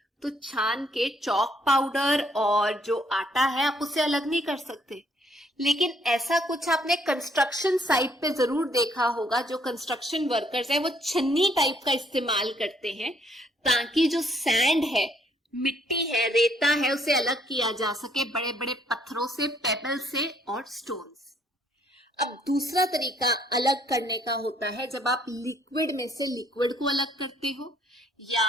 तो छान के चौक पाउडर और जो आटा है आप उसे अलग नहीं कर सकते। लेकिन ऐसा कुछ आपने कंस्ट्रक्शन साइट पे जरूर देखा होगा, जो कंस्ट्रक्शन वर्कर्स है वो छन्नी टाइप का इस्तेमाल करते हैं ताकि जो सैंड है, मिट्टी है, रेता है, उसे अलग किया जा सके बड़े बड़े पत्थरों से, पेबल से और स्टोन से। अब दूसरा तरीका अलग करने का होता है जब आप लिक्विड में से लिक्विड को अलग करते हो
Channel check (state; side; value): normal; both; correlation 0.67